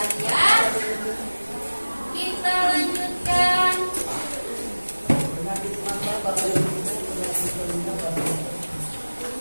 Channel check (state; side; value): inverted; both; correlation -1.00